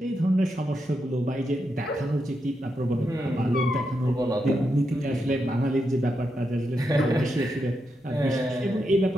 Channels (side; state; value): both; normal; correlation 0.84